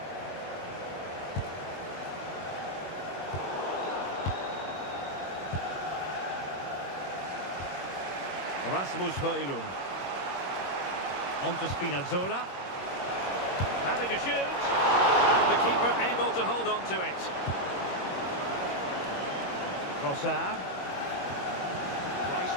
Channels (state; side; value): late; right; 22 ms